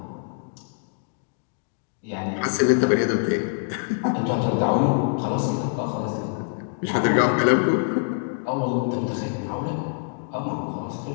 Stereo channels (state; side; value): silent; right; digital silence